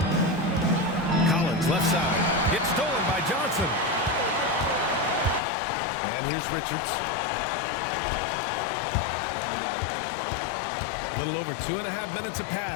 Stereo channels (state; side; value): drops out; right; at 5.4 s